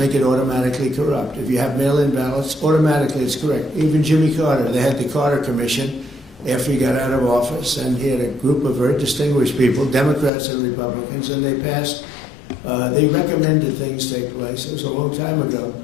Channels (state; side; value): drops out; right; at 10.3 s